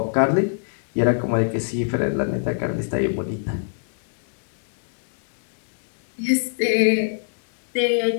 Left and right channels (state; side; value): silent; right; digital silence